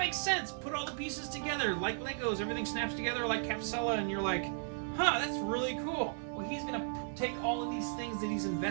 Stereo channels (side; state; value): left; silent; 54 dB below the other